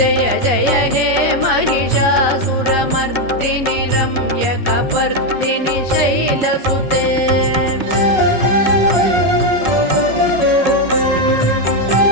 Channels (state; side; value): late; left; 5.4 ms